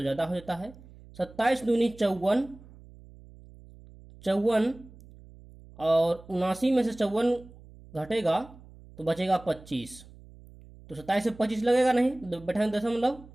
ज़्यादा हो जाता है, 27 दूनी 54, 54 और 79 में से 54 घटेगा तो बचेगा 25, तो 27 से 25 लगेगा नहीं, बैठाएंगे दशमलव,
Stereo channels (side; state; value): right; noise; hum, 21 dB below the sound